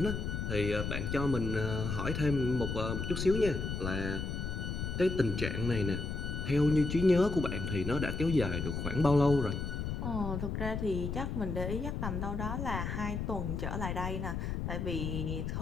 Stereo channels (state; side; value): noise; left; rumble, 3 dB below the sound